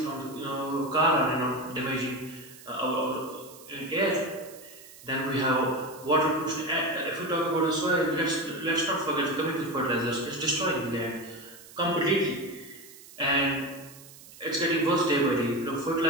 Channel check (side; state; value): right; noise; hiss, 19 dB below the sound